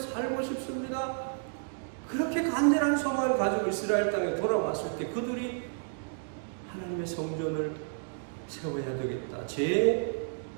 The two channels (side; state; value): left; silent; digital silence